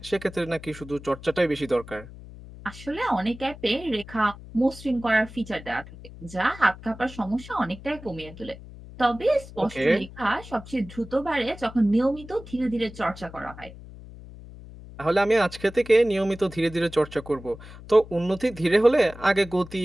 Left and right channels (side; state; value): left; noise; hum, 16 dB below the sound